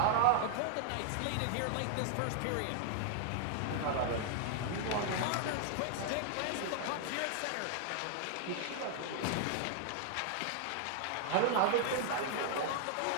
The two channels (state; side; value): different; both; correlation 0.00